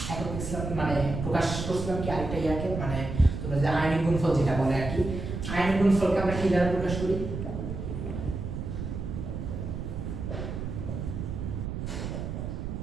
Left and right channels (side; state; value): right; noise; rumble, 5 dB below the sound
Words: একক দেখছিলাম, মানে প্রকাশ করছিলাম কি আরেকটা ইয়াকে, মানে তোমরা যে আয়নিক গুণফল যেটা বলে আর কি, আয়নিক গুণফলকে আমরা কি দ্বারা প্রকাশ করি?